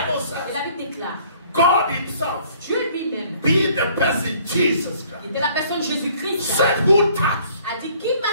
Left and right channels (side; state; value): both; inverted; correlation -0.58